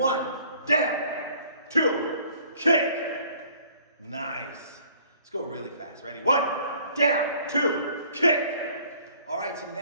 down. 2, kick. Nice. Let's go really fast. Ready? 1, down. 2, kick. All right, so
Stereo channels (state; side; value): inverted; both; correlation -0.56